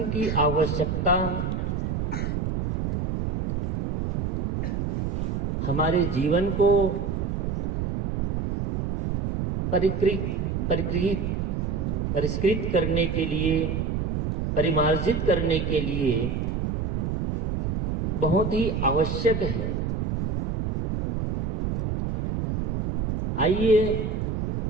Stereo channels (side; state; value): right; noise; rumble, 1 dB below the sound